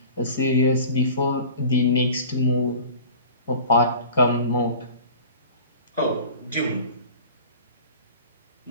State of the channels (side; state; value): both; inverted; correlation -0.41